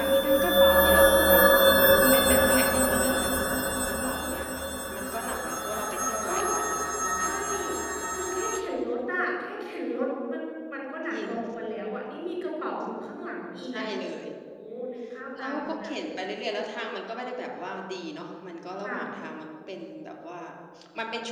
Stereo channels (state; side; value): identical; both; correlation 1.00